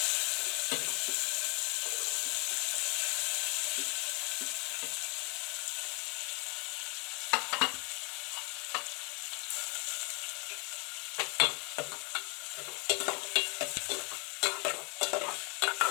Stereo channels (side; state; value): right; quieter; 32.5 dB